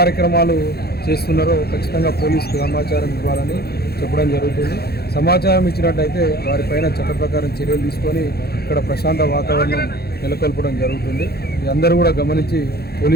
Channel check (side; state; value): right; late; 0.46 ms